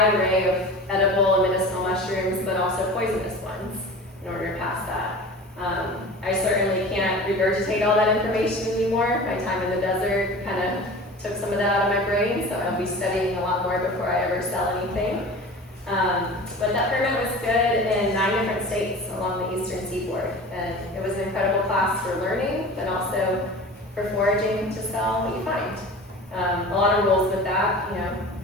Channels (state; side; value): normal; both; correlation 0.37